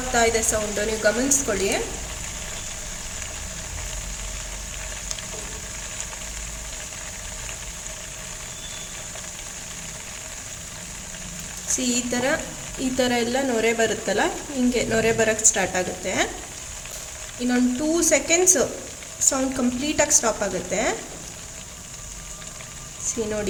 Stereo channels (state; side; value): identical; both; correlation 1.00